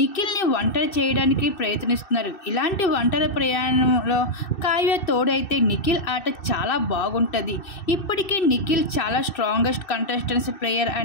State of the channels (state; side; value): late; right; 2.6 ms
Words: ఒంటరి చేయడానికి ప్రయత్నిస్తున్నారు. ఇలాంటి ఒంటరి ప్రయాణంలో కావ్య తోడైతే నిఖిల్ ఆట చాలా బాగుంటుంది. ఇప్పటికీ నిఖిల్ చాలా స్ట్రాంగెస్ట్ కంటెస్టెంట్స్ ప్లేయర్